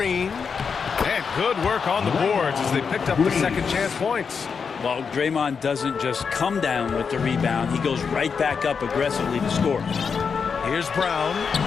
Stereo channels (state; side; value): quieter; right; 5.9 dB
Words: And good work on the boards as they picked up the second chance points. Well, Draymond doesn't just come down with the rebound. He goes right back up aggressively to score. Here's Brown.